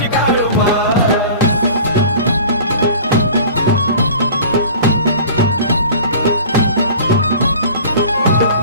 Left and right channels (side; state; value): both; inverted; correlation -0.42